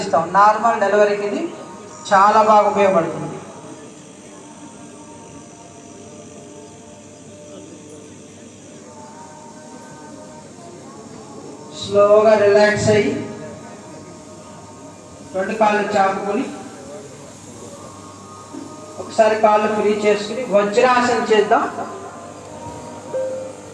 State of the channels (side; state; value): both; identical; correlation 1.00